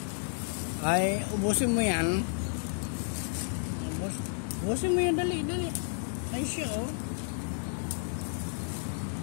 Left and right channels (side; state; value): right; silent; digital silence